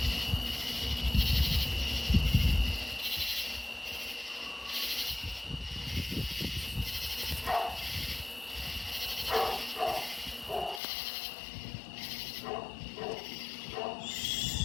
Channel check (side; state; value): right; drops out; at 10.8 s